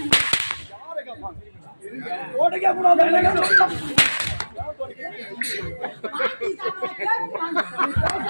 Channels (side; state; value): both; inverted; correlation -1.00